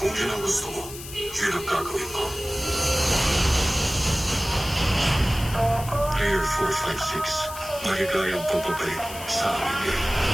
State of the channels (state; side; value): noise; left; hiss, 13 dB below the sound